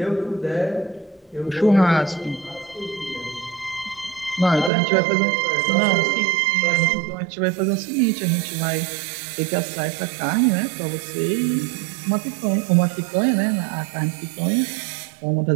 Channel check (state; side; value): drops out; left; at 4.7 s